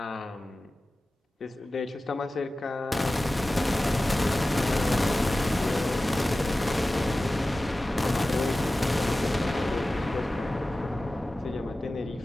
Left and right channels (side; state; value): both; normal; correlation 0.96